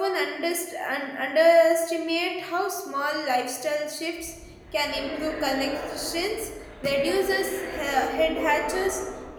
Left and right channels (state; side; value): identical; both; correlation 1.00